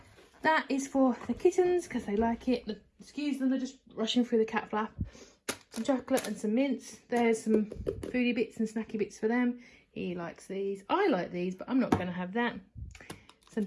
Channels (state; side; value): identical; both; correlation 1.00